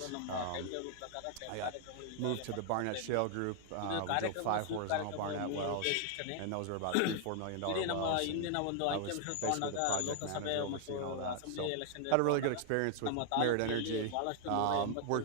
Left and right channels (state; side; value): different; both; correlation 0.00